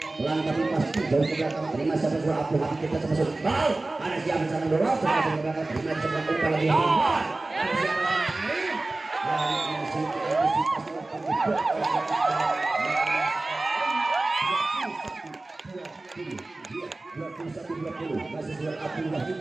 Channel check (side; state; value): left; quieter; 3.0 dB